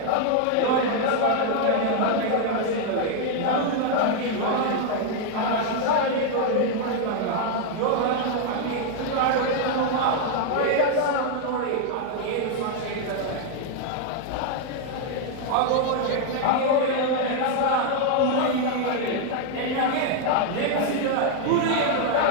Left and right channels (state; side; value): different; both; correlation 0.00